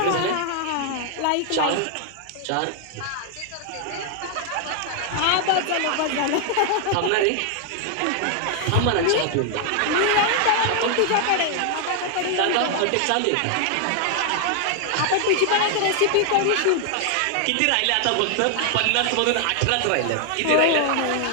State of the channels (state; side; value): different; both; correlation 0.00